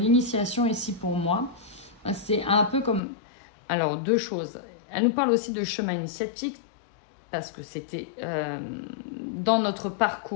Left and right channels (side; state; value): right; drops out; at 3.0 s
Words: ici pour moi, c'est un peu comme... Alors, deux choses. Elle nous parle aussi de chemin initiatique, parce que c'était dans notre